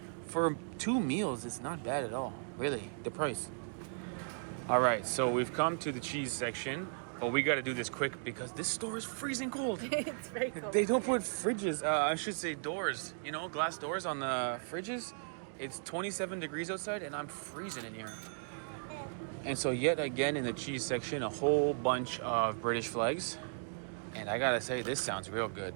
for two meals. It's not bad at all, really. The price. All right, so we've come to the cheese section. But we got to do this quick because this store is freezing cold. It's very cold. They don't put fridges, I should say doors, glass doors on the fridges. It's 27 degrees outside and I'm freezing in here. And so yet again in the cheese section, a whole bunch of British flags. And I got to say, this sounds real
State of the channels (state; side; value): silent; left; digital silence